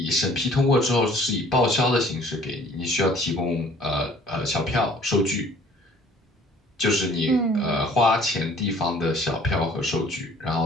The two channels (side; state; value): both; normal; correlation 0.54